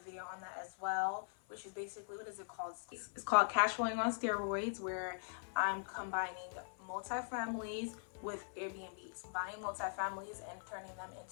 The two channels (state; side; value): silent; right; 50 dB below the other